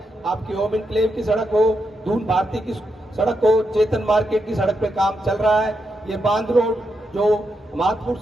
आपकी ओम इनक्लेव की सड़क हो, दून भारती की सड़क हो, चेतन मार्केट की सड़क पे काम चल रहा है, ये बांध रोड जो माधपुर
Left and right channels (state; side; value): normal; both; correlation 0.83